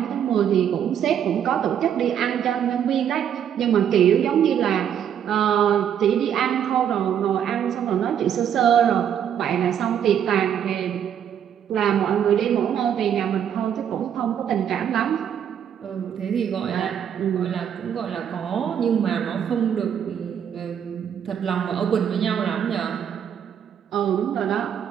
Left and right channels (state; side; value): quieter; left; 9.0 dB